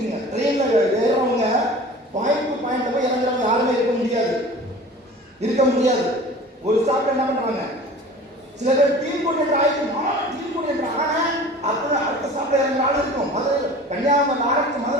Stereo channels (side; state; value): both; normal; correlation 0.41